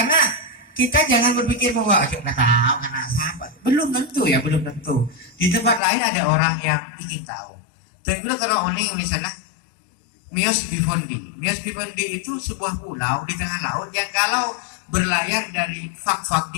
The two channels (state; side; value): drops out; right; at 5.8 s